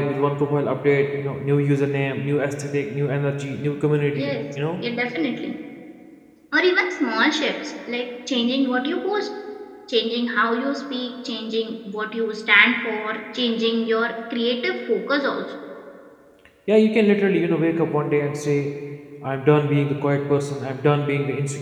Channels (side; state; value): both; identical; correlation 1.00